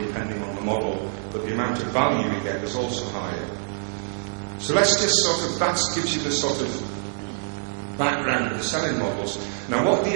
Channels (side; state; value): left; silent; 62 dB below the other